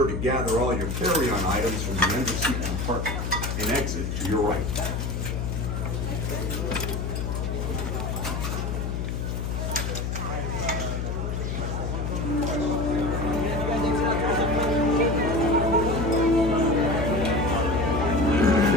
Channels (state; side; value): noise; left; hum, 2 dB below the sound